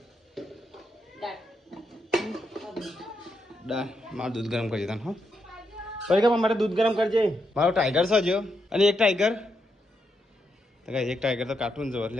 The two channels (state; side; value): normal; both; correlation 0.81